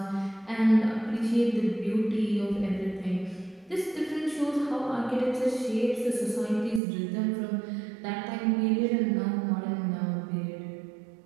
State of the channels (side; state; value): left; drops out; at 6.8 s